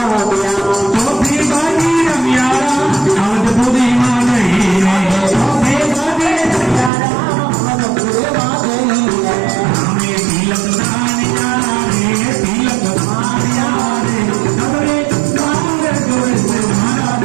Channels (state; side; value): drops out; left; at 6.9 s